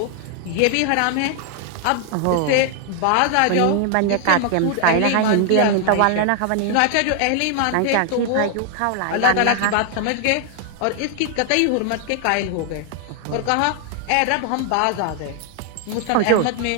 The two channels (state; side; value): different; both; correlation 0.00